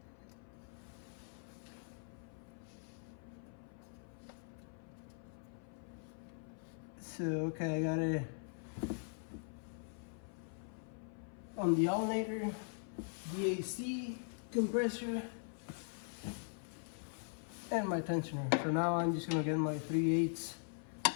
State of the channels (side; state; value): right; silent; 50 dB below the other